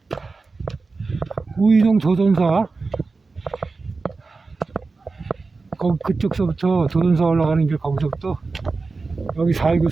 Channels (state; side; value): quieter; left; 4.0 dB